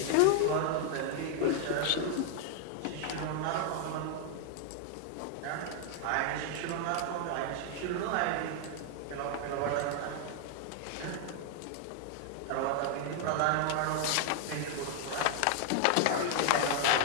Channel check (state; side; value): different; both; correlation 0.00